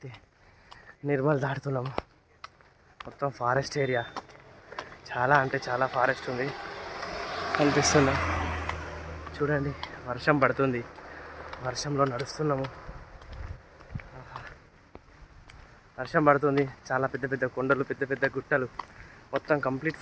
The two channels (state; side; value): identical; both; correlation 1.00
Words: నిర్మల్ దాటుతున్నాము. మొత్తం ఫారెస్ట్ ఏరియా, చాలా అంటే చాలా ఫారెస్ట్ ఉంది కనిపిస్తుందా చూడండి. వర్షం పడుతుంది, వర్షంలో నడుస్తున్నాము. వర్షం పడుతుంది, చాలా పెద్ద పెద్ద కొండలు, పెద్ద పెద్ద గుట్టలు, మొత్తం కంప్లీట్